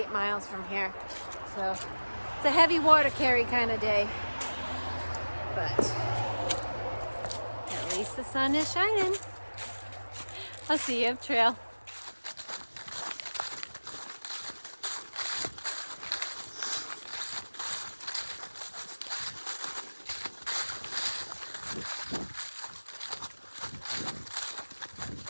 miles from here. So it's a heavy water carry kind of day. But at least the sun is shining. I'll see you up trail.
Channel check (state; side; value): inverted; both; correlation -1.00